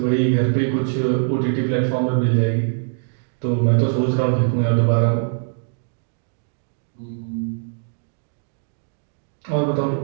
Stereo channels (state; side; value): silent; left; digital silence